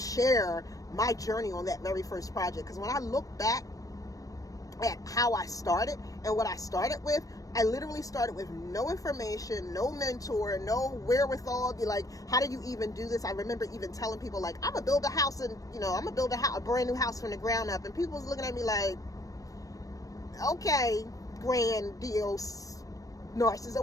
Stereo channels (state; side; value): late; right; 0.16 ms